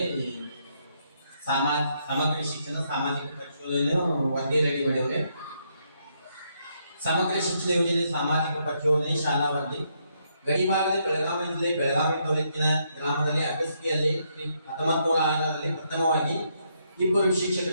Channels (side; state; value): both; inverted; correlation -0.76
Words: ಸಮಗ್ರ ಶಿಕ್ಷಣ ಸಾಮಾಜಿಕ ಪರಿಶೋಧನೆ ವರದಿ ರೆಡಿ ಮಾಡಿದ್ರೆ. ಸಮಗ್ರ ಶಿಕ್ಷಣ ಯೋಜನೆ ಸಾಮಾಜಿಕ ಪರಿಶೋಧನೆ ಶಾಲಾ ವರದಿ ಗಡಿಭಾಗದ ಬೆಳಗಾವಿ ಜಿಲ್ಲೆ ಬೆಳಗಾವಿ ತಾಲೂಕಿನ ಗ್ರಾಮದಲ್ಲಿ ಅಗಸ್ತಿಯಲ್ಲಿ 1906ರಲ್ಲಿ ಪ್ರಥಮವಾಗಿ 2